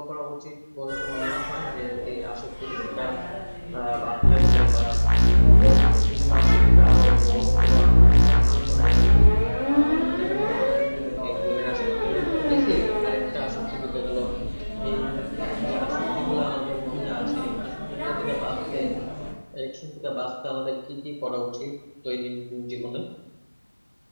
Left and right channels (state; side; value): inverted; both; correlation -1.00